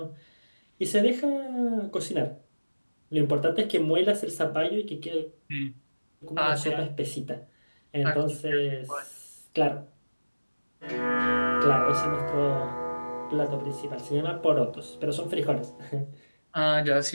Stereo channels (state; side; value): inverted; both; correlation -1.00